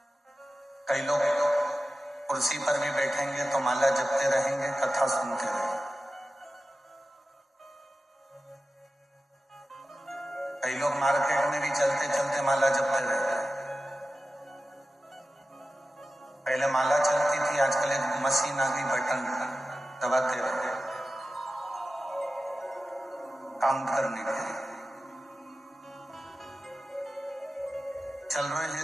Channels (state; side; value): normal; both; correlation 0.94